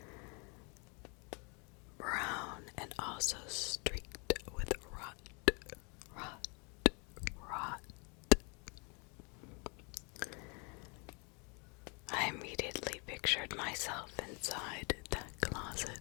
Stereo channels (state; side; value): quieter; right; 33.2 dB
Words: Brown and also streaked with rot. I immediately pictured myself inside that closet.